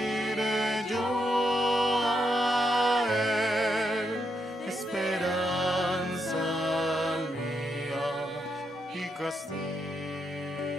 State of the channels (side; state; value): both; normal; correlation 0.81